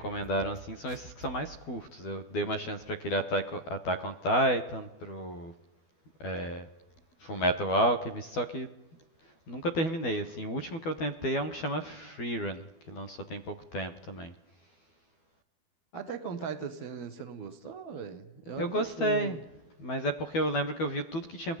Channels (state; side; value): late; right; 12 ms